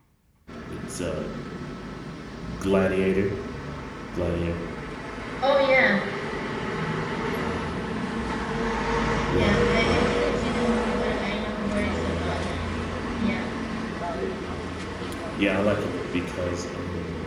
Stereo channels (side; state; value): both; identical; correlation 1.00